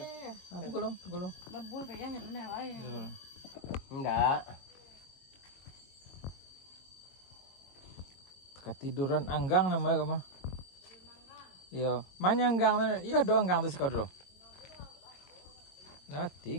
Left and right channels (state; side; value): late; right; 22 ms